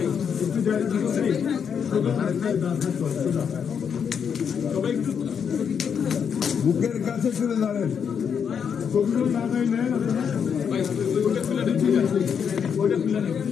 বুকের কাছে চলে দাঁড়েন। ছবিগুলো না দেয় নেন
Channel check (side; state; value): right; quieter; 7.2 dB